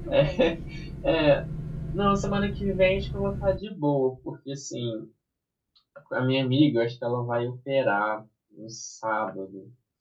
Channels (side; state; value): both; identical; correlation 1.00